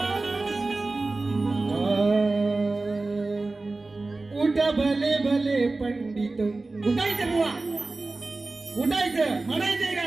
उठा भले भले पंडित उठायचं बुवा उठायचं म्हणायचंय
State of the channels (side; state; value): left; quieter; 3.4 dB